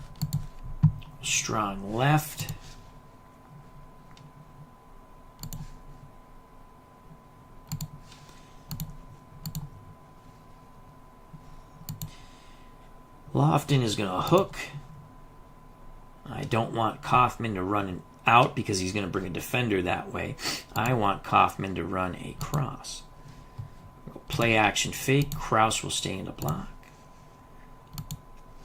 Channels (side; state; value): both; identical; correlation 1.00